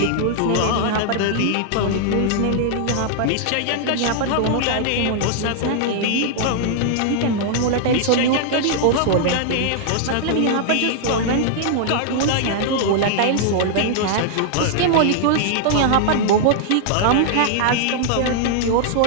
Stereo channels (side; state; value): both; different; correlation -0.01